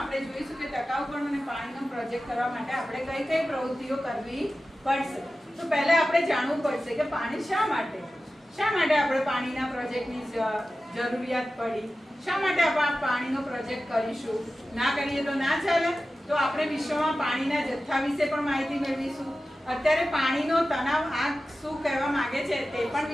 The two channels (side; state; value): both; normal; correlation 0.94